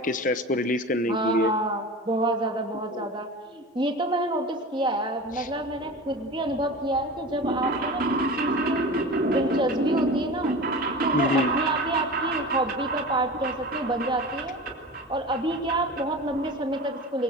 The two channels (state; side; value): normal; both; correlation 0.33